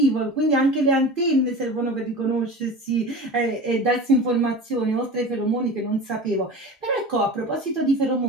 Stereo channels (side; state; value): both; normal; correlation 0.34